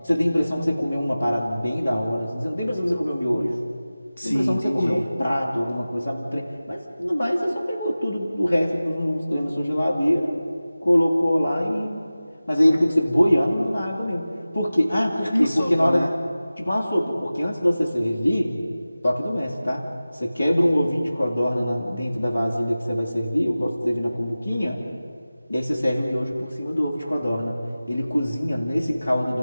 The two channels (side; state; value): both; inverted; correlation -0.97